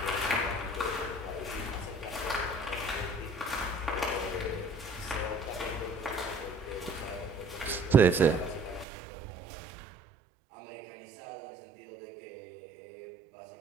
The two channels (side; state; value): left; drops out; at 8.8 s